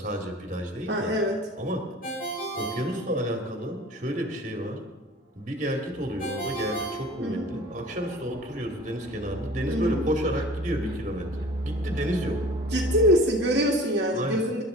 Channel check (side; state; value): both; normal; correlation 0.44